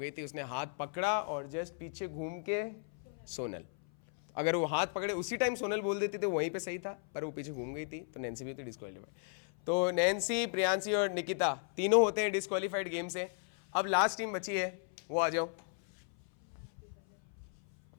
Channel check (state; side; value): silent; right; 54 dB below the other